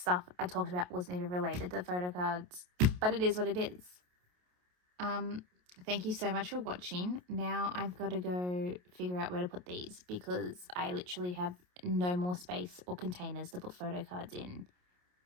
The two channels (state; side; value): late; left; 28 ms